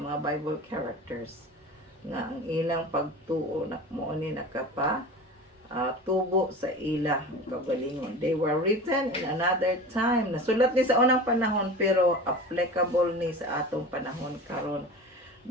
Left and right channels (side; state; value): both; normal; correlation 0.34